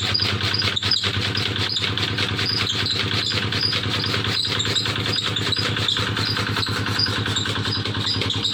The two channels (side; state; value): both; identical; correlation 1.00